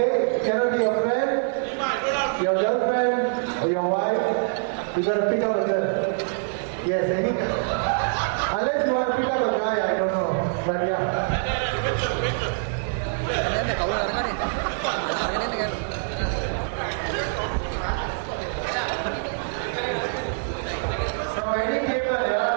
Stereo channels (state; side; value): silent; left; digital silence